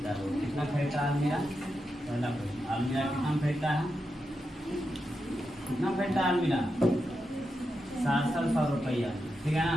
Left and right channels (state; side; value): normal; both; correlation 0.87